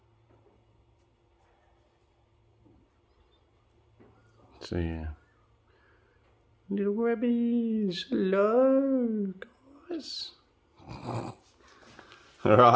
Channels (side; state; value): both; identical; correlation 1.00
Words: So yeah, little rabbies, hello guys. All